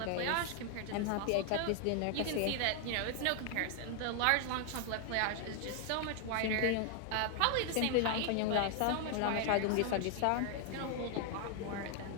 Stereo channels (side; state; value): both; different; correlation 0.00